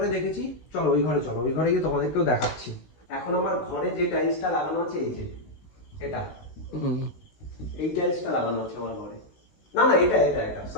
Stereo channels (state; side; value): late; right; 16 ms